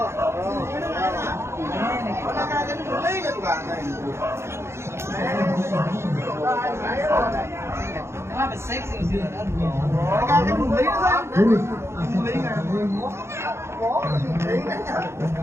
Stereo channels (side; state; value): left; late; 0.13 ms